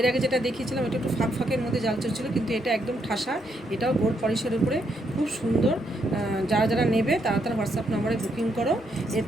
আগে যেটা দেখিয়েছিলাম এটা একটু ফাঁকের মধ্যে জালচুর ছিল, কিন্তু এটা একদম ঠাসা। এটাও গোল্ড পলিশের উপরে, খুব সুন্দর। যারা যারা নেবে তারা তারা হোয়াটসঅ্যাপ নাম্বারে বুকিং করো। এর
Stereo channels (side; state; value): both; normal; correlation 0.76